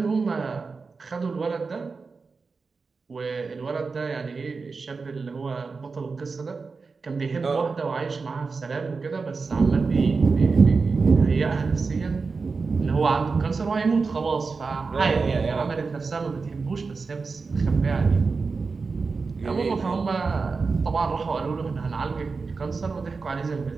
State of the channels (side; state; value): left; quieter; 4.5 dB